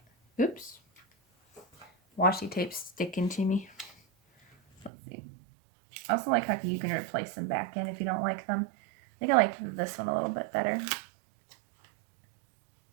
Oops. Washi tape sticking to me. Let's see. I also like how you can replace them back in if you don't like them. I think I like this one a little bit better.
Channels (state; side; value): drops out; left; at 4.9 s